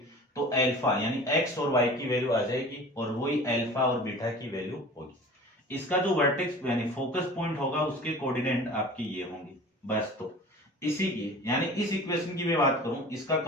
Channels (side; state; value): both; normal; correlation 0.41